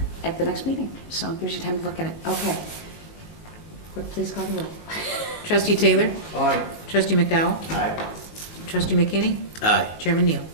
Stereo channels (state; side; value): late; right; 24 ms